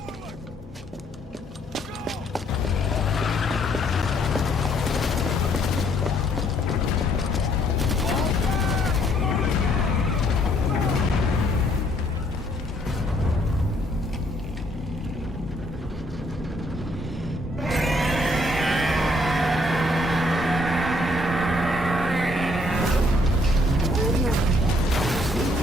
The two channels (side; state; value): both; normal; correlation 0.67